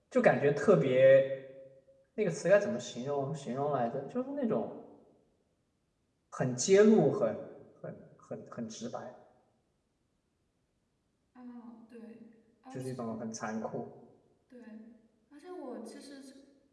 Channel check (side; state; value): both; identical; correlation 1.00